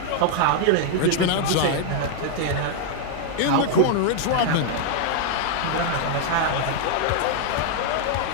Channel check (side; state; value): both; different; correlation 0.00